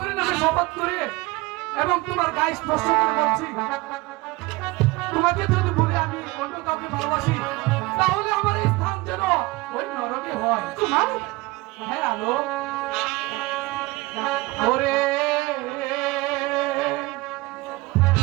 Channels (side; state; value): left; quieter; 21.9 dB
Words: নামে শপথ করে এবং তোমার গায়ে স্পর্শ করে বলছি, তোমাকে যদি বলি আমি অন্য কাউকে ভালোবাসি, তাহলে আমার এই স্থান যেন ওই নরকে হয়। কুমার, হ্যাঁ আলো, ওরে